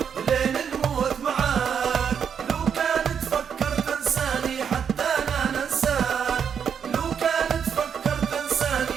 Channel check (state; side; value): quieter; left; 7.5 dB